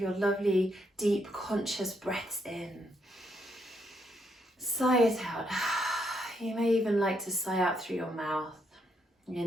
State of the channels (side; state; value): both; normal; correlation 0.77